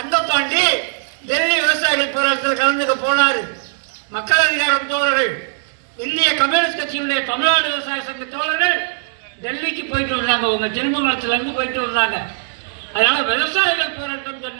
டெல்லி விவசாயிகள் போராட்டத்தில் கலந்துக்க போனார். மக்கள் அதிகாரம் தோழர்கள், இந்திய கம்யூனிஸ்ட் கட்சியினுடைய தமிழ்நாடு விவசாய சங்க தோழர்கள் டெல்லிக்கு போயிட்டு வந்தாங்க, உங்க திருமங்கலத்திலிருந்து போயிட்டு வந்தாங்க. அதனால விவசாயிகள் போராட்டம்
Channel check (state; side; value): silent; left; digital silence